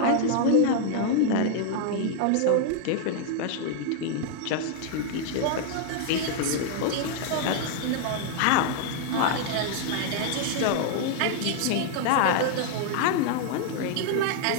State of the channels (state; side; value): different; both; correlation 0.00